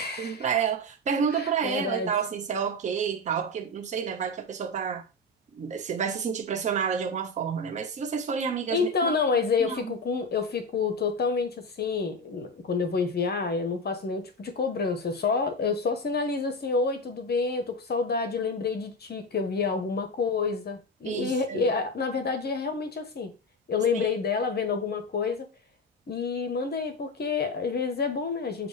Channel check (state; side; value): normal; both; correlation 0.16